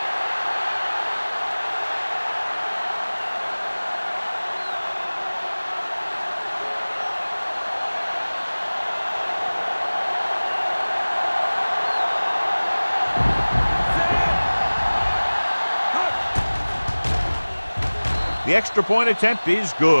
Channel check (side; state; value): both; inverted; correlation -1.00